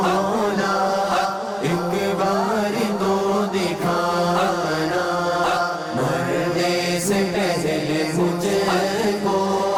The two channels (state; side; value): identical; both; correlation 1.00